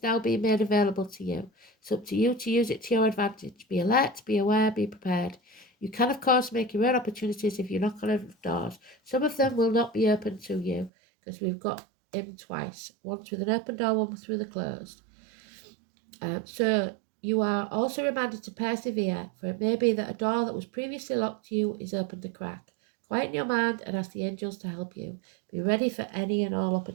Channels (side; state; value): left; drops out; at 10.9 s